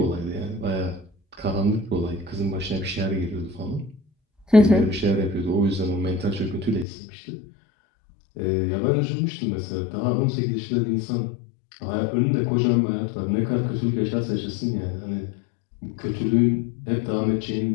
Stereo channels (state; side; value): drops out; right; at 6.9 s